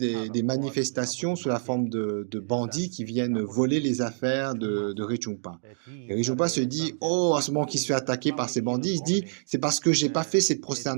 manifestations sous la forme de bandits qui viennent voler les affaires de Rinpoche. Et Rinpoche se dit, oh, à ce moment qu'il se fait attaquer par ces bandits, il se dit, c'est parce que j'ai pas fait cette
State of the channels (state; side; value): silent; left; digital silence